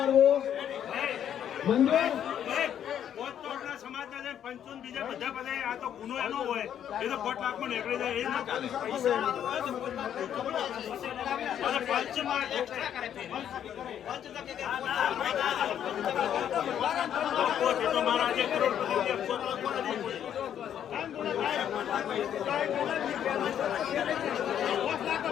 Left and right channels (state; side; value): quieter; right; 9.7 dB